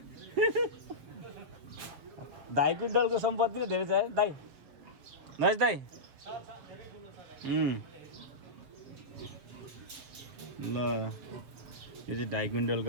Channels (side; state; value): left; late; 7.5 ms